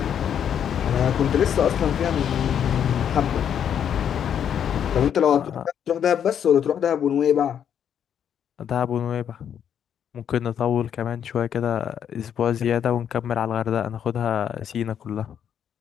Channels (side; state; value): right; quieter; 8.8 dB